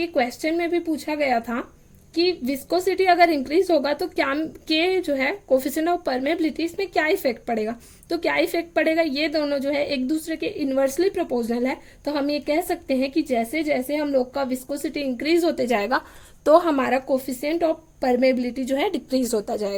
क्वेश्चन में भी पूछा गया था कि विस्कोसिटी अगर इंक्रीज होगा तो क्या के जो है कोफिशिएंट ऑफ परमेबिलिटी, इसमें क्या इफेक्ट पड़ेगा। तो क्या इफेक्ट पड़ेगा, ये दोनों जो है एक दूसरे के इन्वर्सली प्रोपोर्शनल है। तो हम ये कह सकते हैं कि जैसे जैसे हम लोग का विस्कोसिटी इंक्रीज होते जाएगा तो हमारा कोफिशिएंट ऑफ परमेबिलिटी जो है डिक्रीज होता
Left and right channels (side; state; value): both; identical; correlation 1.00